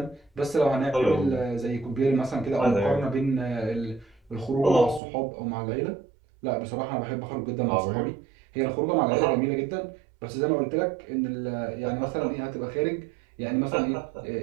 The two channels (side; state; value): left; drops out; at 5.0 s